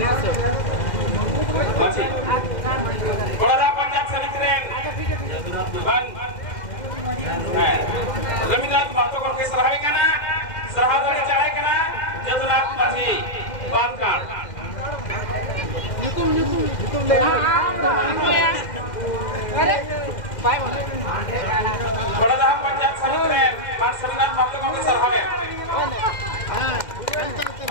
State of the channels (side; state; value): right; late; 2.1 ms